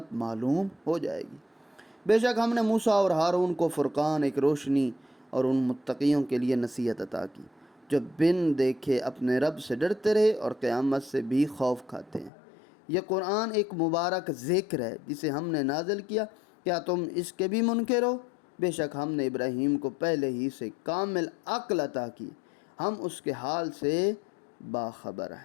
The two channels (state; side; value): drops out; right; at 12.3 s